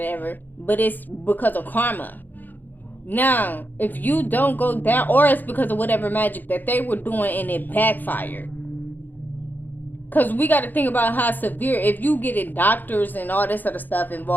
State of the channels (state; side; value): late; right; 0.087 ms